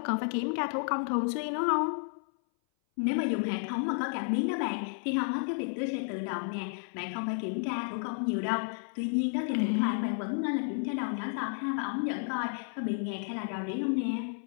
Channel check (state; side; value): silent; right; 56 dB below the other